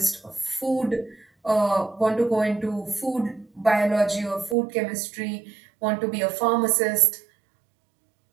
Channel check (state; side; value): drops out; left; at 4.5 s